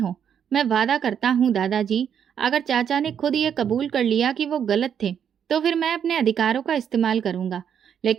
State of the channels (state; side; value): quieter; left; 8.3 dB